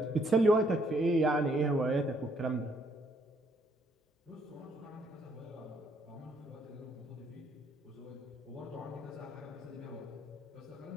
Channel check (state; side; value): normal; both; correlation 0.69